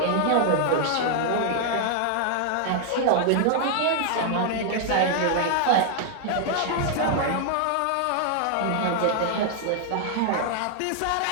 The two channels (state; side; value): different; both; correlation 0.00